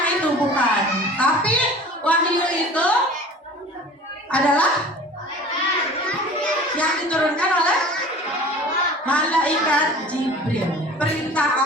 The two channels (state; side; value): normal; both; correlation 0.42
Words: itu, bukan. Tapi wahyu itu adalah yang diturunkan oleh malaikat Jibril.